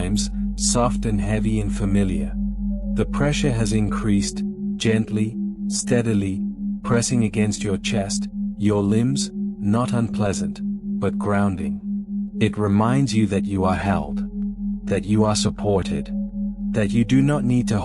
soft and heavy and familiar. The pressure has increased, gently, steadily, pressing against your chest, your limbs, not unpleasant, but grounding. It reminds you that you are held, that you are supported, that you do not need to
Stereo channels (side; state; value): both; identical; correlation 1.00